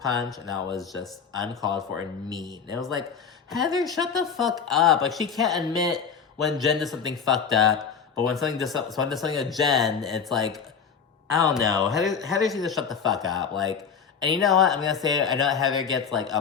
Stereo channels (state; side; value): quieter; right; 6.5 dB